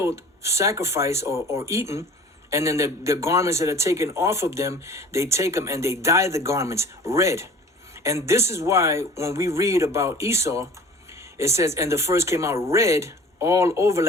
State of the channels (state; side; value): normal; both; correlation 0.45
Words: sacrificed, or eaten. And then the garments that are taken off of them, they take them and they dye the garments red. And this is why when we read about Esau, it says, and the first came out red all over